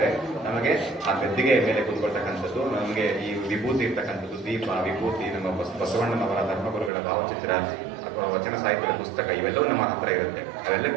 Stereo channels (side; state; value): left; drops out; at 6.9 s